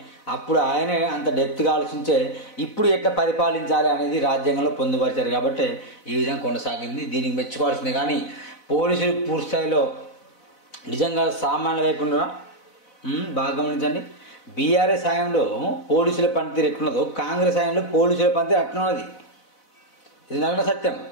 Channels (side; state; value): right; late; 4.0 ms